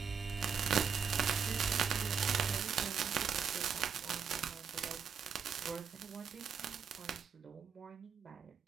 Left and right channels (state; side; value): quieter; left; 6.6 dB